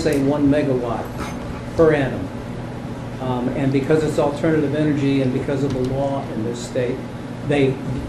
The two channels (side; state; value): both; identical; correlation 1.00